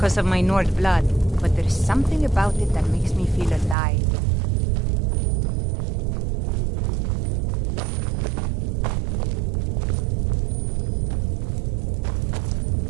of my Nord blood, but there's something about it that makes me feel alive.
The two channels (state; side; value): drops out; left; at 3.8 s